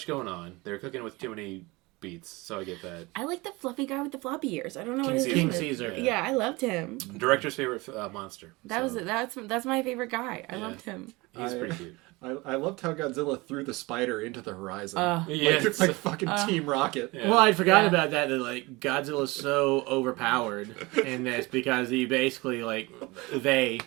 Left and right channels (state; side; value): quieter; left; 23.5 dB